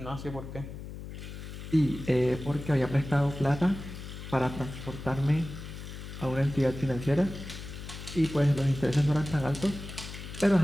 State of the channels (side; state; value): left; noise; hum, 10 dB below the sound